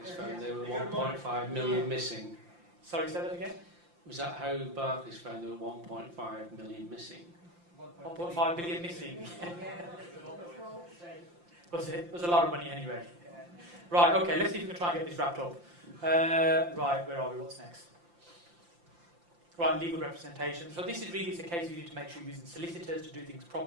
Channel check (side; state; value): left; late; 5.8 ms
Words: found there were 1.5 million missing? Sorry, say that again? Was that how Barclays found there were 1.5 million missing? 1.5 billion missing. Was it? It was a lot of money anyway. Right, okay, let's see if we can try and get this wrapped up. Right, where are we? What's next? Right, legal representation. So this is really a case you need to make sure you're using solicitors to do things